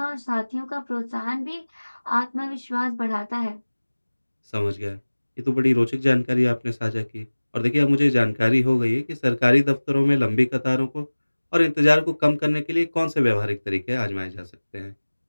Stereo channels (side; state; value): both; inverted; correlation -1.00